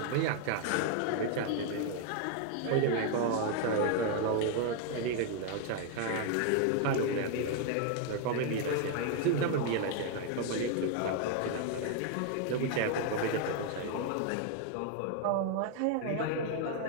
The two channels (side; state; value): both; different; correlation 0.00